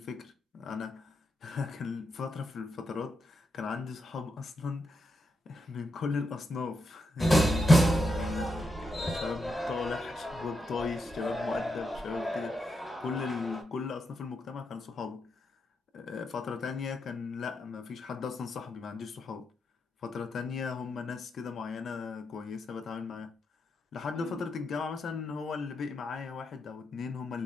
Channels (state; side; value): normal; both; correlation 0.84